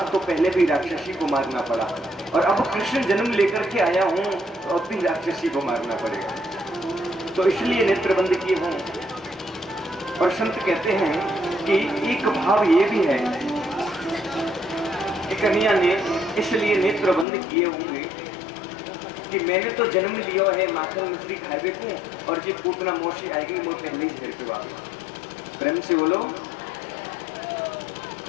तो पहले भी राक्षसी को मारना पड़ा और अब कृष्ण जन्म लेकर के आया हूं तो अब भी राक्षसी को मारना पड़ेगा, तो इसलिए नेत्र बंद किए हों। और संत कहते हैं कि एक भाव ये भी है कि कन्हैया ने इसलिए नेत्र बंद किए होंगे कि मैंने तो जन्म लिया है माखन मिश्री खाए को और जी पूतना मौसी आएगी मैं पहले ही घर पे वापस। प्रेम से बोलो।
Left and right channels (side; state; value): right; drops out; at 17.2 s